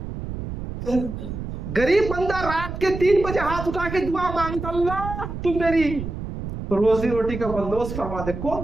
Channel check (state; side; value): noise; right; rumble, 7 dB below the sound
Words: پھر غریب بندہ رات کے 3 بجے ہاتھ اٹھا کے دعا مانگتا، اللہ تم میری روزی روٹی کا بندوبست فرما دے،